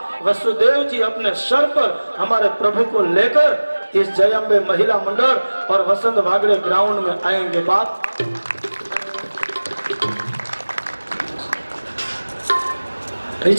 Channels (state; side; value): inverted; both; correlation -1.00